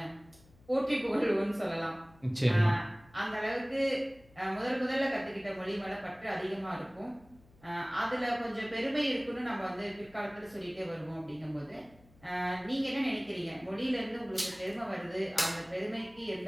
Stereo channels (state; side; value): noise; left; hum, 27 dB below the sound